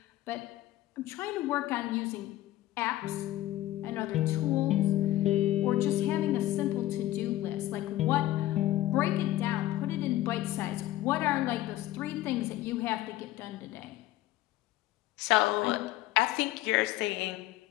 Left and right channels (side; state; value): right; quieter; 15.2 dB